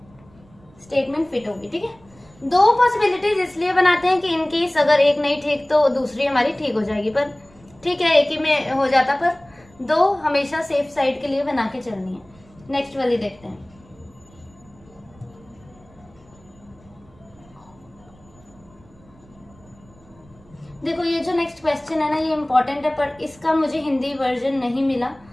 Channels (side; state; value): right; noise; rumble, 27 dB below the sound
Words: स्टेटमेंट फिट होगी, ठीक है। 2 पॉसिबिलिटीज इसलिए बनाते हैं कि इनकेस अगर एक नहीं ठीक तो दूसरी हमारी ठीक हो जाएगी, पर ठीक है एक ही में हो जाता, पर 2 हमेशा सेफ साइड के लिए बना के चलनी है। नेक्स्ट वाली देखते हैं। देखो ये जो नेक्स्ट क्वेश्चन है ना, ये इम्पोर्टेंट है, पर इसका मुझे हिंदी वर्जन नहीं मिला,